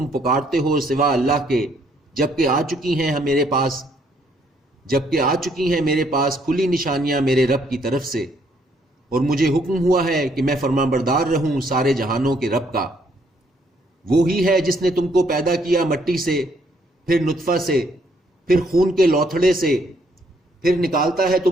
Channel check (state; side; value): normal; both; correlation 0.69